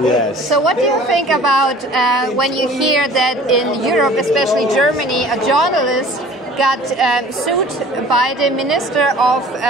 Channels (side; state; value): both; normal; correlation 0.47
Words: Yes. So what do you think about when you hear that in Europe, especially Germany, a journalist got sued by the Minister of